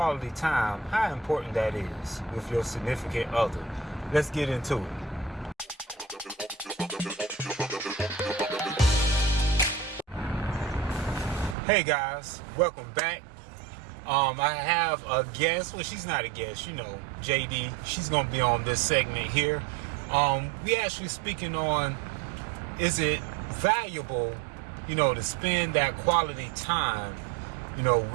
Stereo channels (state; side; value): drops out; left; at 11.6 s